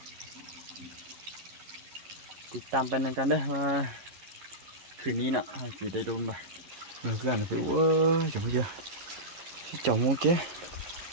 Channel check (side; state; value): left; late; 11 ms